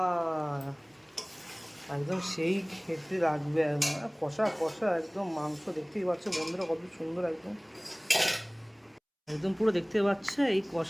একদম সেই খেতে লাগবে একদম কষা কষা একদম মাংস। দেখতেই পাচ্ছ বন্ধুরা কত সুন্দর একদম, একদম পুরো দেখতে পাচ্ছে এই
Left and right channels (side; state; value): both; identical; correlation 1.00